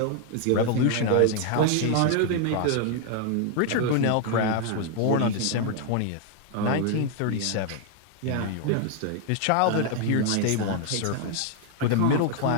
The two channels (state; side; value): different; both; correlation 0.00